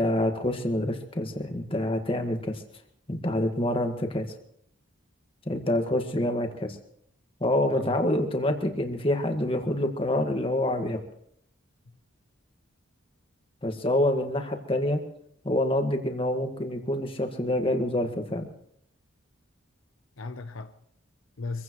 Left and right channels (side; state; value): both; normal; correlation 0.58